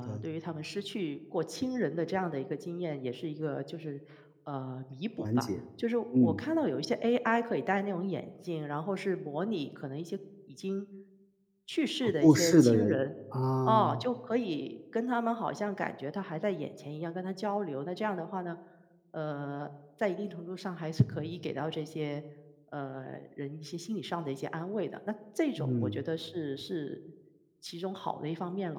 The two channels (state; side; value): identical; both; correlation 1.00